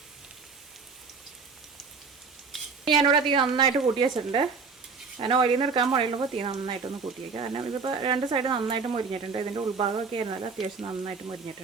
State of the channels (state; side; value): quieter; left; 5.0 dB